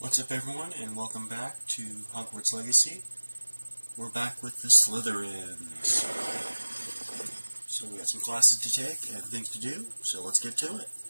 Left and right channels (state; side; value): inverted; both; correlation -1.00